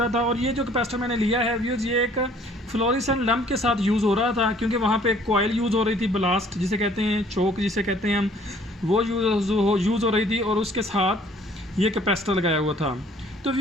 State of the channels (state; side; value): normal; both; correlation 0.57